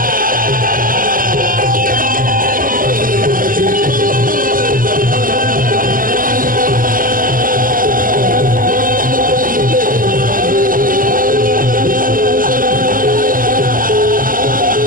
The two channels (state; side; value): late; left; 0.41 ms